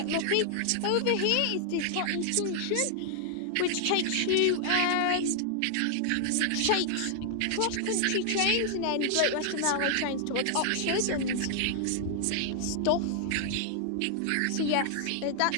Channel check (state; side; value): different; both; correlation 0.00